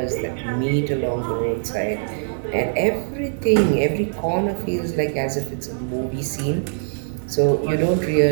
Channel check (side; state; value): left; silent; digital silence